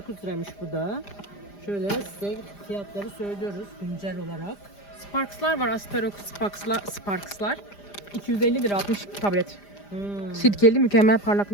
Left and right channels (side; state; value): right; late; 5.0 ms